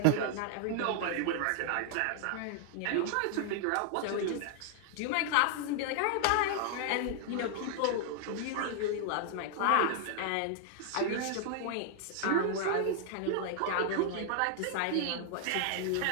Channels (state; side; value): different; both; correlation 0.00